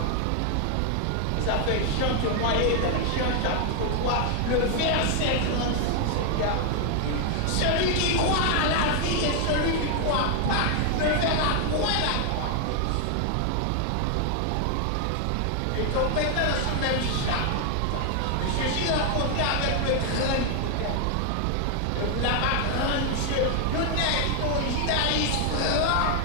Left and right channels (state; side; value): different; both; correlation 0.00